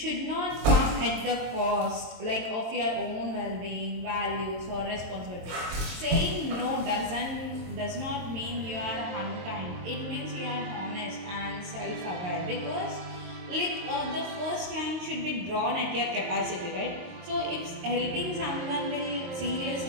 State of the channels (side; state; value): left; late; 23 ms